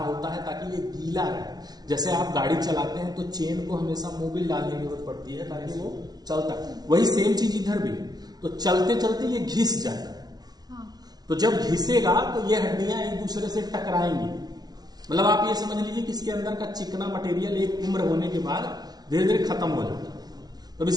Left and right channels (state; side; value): late; left; 0.19 ms